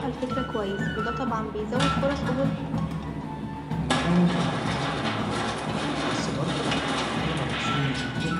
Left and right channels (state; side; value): identical; both; correlation 1.00